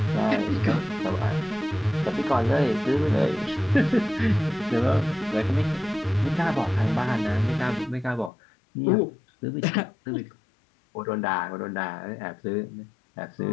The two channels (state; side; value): drops out; right; at 8.3 s